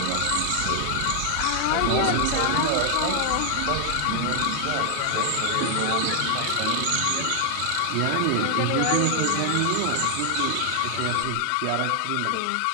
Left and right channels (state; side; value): different; both; correlation 0.00